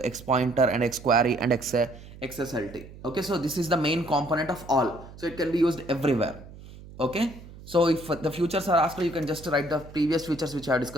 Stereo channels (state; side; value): noise; right; hum, 17 dB below the sound